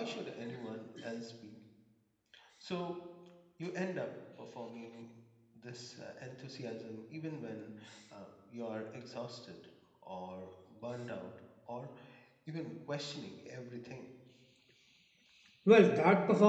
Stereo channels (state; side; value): identical; both; correlation 1.00